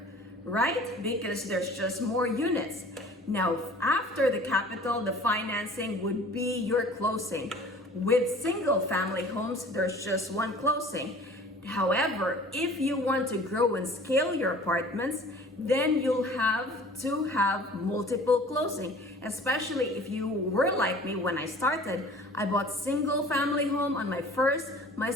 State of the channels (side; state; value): both; normal; correlation 0.47